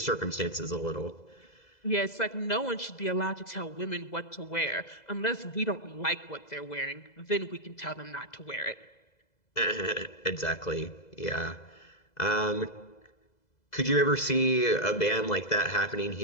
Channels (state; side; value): late; right; 2.0 ms